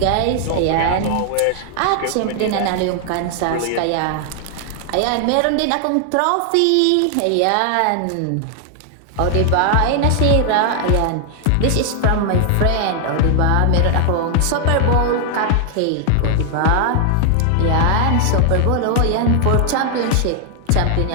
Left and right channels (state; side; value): different; both; correlation 0.00